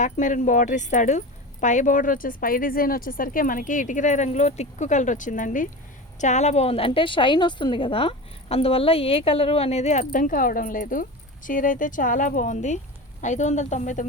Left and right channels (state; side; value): normal; both; correlation 0.28